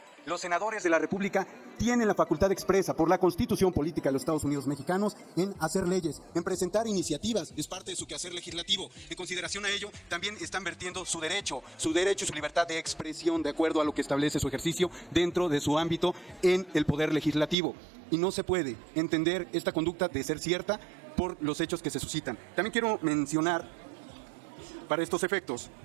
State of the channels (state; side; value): drops out; left; at 17.6 s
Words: los senadores de la República tienen la facultad expresa por la Constitución política de los Estados Unidos mexicanos en hacer leyes, en presentar iniciativas, es parte de su quehacer legislativo. En consideración a ello, también están vertiendo su derecho y su libertad de expresión de acuerdo a lo que establece su ejercicio dentro de su ámbito en el poder legislativo. Y no se puede entender esta conducta de ser cierta por los hechos que se suscitan. También quiero mencionar, para estos efectos,